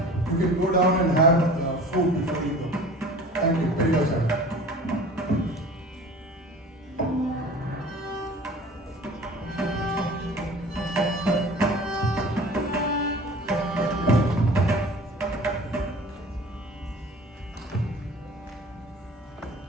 You can go down and have food before you go. Thank you very much.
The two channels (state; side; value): normal; both; correlation 0.42